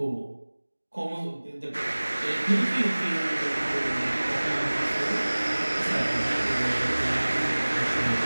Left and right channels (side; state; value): both; inverted; correlation -1.00